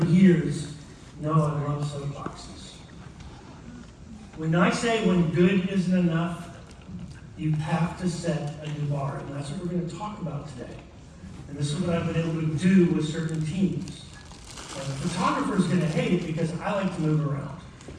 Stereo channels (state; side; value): identical; both; correlation 1.00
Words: years, know I love soapboxes. When I say when good isn't enough, you have to set a new bar, and that's what we're going to talk about today. And this is what I've been able to do with certain teams. And the photographer's going to hate it because I like to move around.